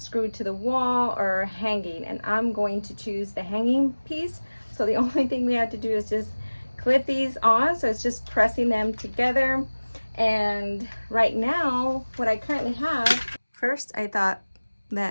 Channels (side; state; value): both; inverted; correlation -1.00